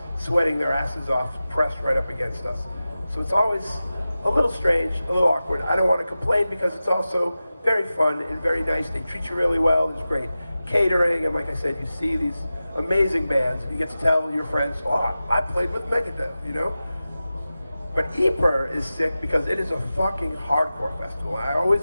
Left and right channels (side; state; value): both; inverted; correlation -0.95